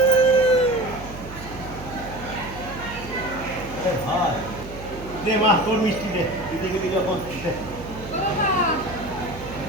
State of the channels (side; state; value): right; noise; hum, 13 dB below the sound